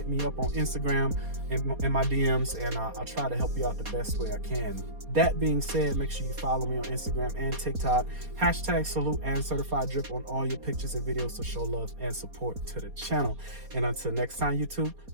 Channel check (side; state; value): left; late; 4.2 ms